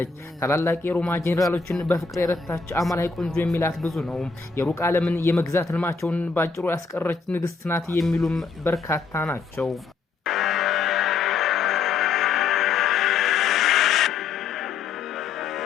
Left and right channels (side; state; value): right; quieter; 5.0 dB